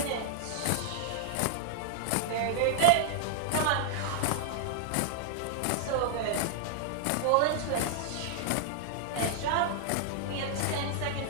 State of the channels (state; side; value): different; both; correlation 0.00